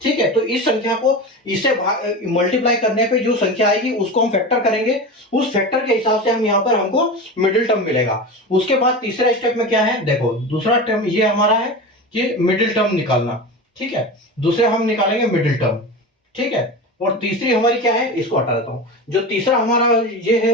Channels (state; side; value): normal; both; correlation 0.26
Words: ठीक है, तो इस संख्या को इससे मल्टीप्लाई करने पे जो संख्या आएगी उसको हम फैक्टर करेंगे, उस फैक्टर के हिसाब से हम यहाँ पर हमको मिडिल टर्म मिलेगा। उसके बाद तीसरा स्टेप में क्या है, देखो दूसरा टर्म ये हमारा है कि मिडिल टर्म निकालना। ठीक है, दूसरे हम निकालेंगे मिडिल टर्म। ठीक है, और तीसरी हमारी क्या है, इसको हटा देता हूं। जो तीसरा हमारा ये